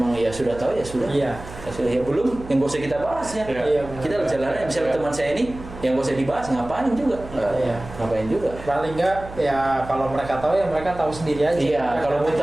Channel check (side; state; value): right; noise; hum, 14 dB below the sound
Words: ya sudah tahu ya sudah. Iya. Ya sudah, ya belum, yang nggak usah kita bahas ya. Iya, Kita jalannya misalnya teman saya ini yang nggak usah dibahas, ngapain juga. Iya. Ngapain juga. Paling enggak ya kalau mereka tahu ya mereka tahu sendiri aja. Iya, kalau mau